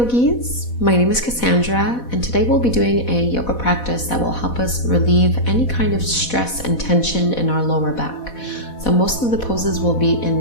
my name is Kassandra, and today we'll be doing a yoga practice that will help us relieve any kind of stress and tension in our lower back. So most of the poses will be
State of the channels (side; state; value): right; late; 4.1 ms